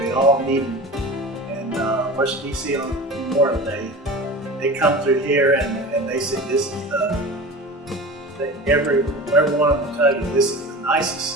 all meet in Washington, D.C. on Memorial Day. They come through here and they say, this is every one of them tell you, this is the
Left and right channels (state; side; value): normal; both; correlation 0.34